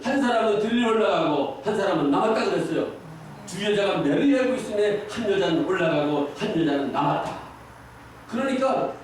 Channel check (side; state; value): both; identical; correlation 1.00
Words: 한 사람은 들려 올라가고 한 사람은 남았다 그랬어요. 두 여자가 매를 갈고 있음에 한 여자는 올라가고 한 여자는 남았다. 그러니까